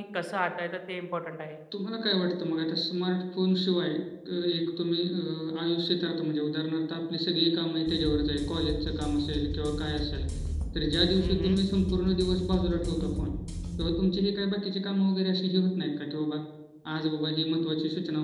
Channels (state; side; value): identical; both; correlation 1.00